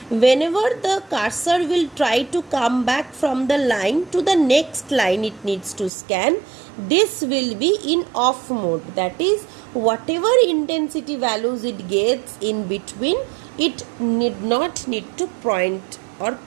Whenever the cursor will try to come back from the line to the next line it needs to scan, this will be in off mode. That is, whatever intensity values it gets in between, it need not need to point or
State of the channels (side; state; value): left; drops out; at 5.9 s